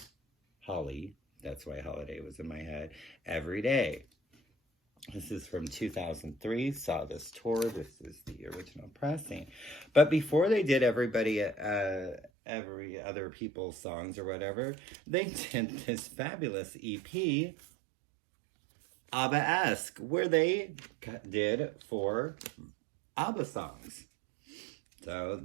Holly. That's why Holiday was in my head. Every Day. This is from 2003. Saw this tour. This is the original pressing. But before they did every other people's songs or whatever, they did this fabulous EP, ABBA-esque, where they did 4 ABBA songs. So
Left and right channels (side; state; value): left; drops out; at 12.3 s